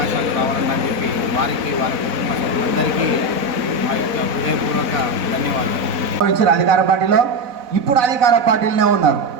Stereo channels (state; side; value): late; left; 4.0 ms